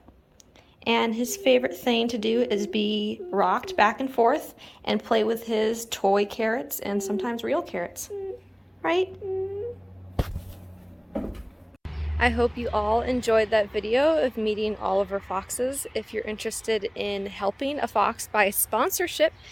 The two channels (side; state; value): both; identical; correlation 1.00